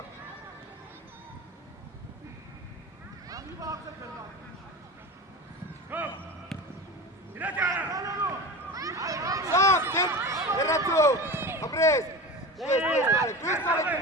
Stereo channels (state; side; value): normal; both; correlation 0.30